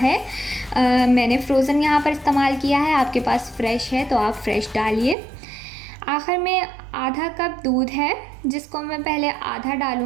मैंने फ्रोज़न यहाँ पर इस्तेमाल किया है, आपके पास फ्रेश है तो आप फ्रेश डालिए। आखिर में आधा कप दूध है, जिसको मैं पहले आधा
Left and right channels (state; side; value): drops out; left; at 5.2 s